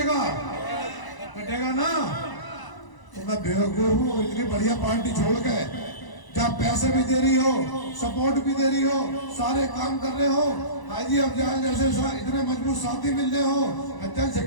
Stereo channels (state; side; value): late; right; 1.0 ms